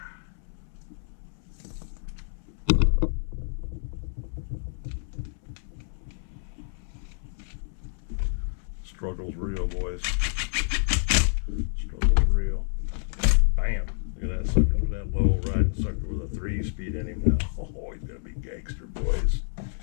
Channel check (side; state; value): right; silent; 59 dB below the other